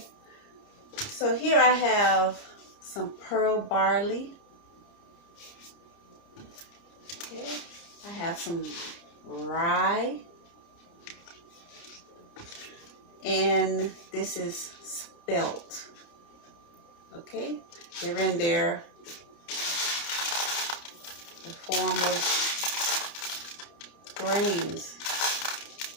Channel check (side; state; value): right; late; 29 ms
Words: so here I have some pearl barley. Okay, I have some rye. And this is spelt. Okay, they're in there the form of grains.